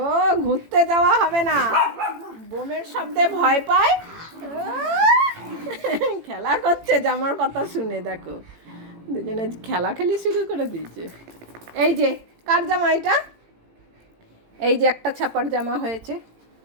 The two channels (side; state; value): left; late; 18 ms